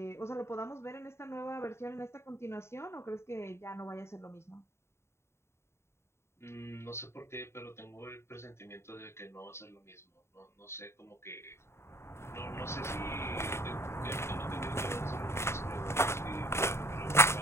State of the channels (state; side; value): late; right; 0.13 ms